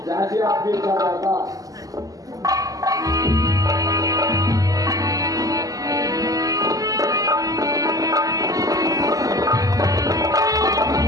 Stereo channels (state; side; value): late; left; 0.17 ms